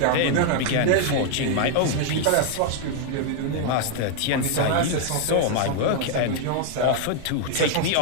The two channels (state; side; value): different; both; correlation 0.00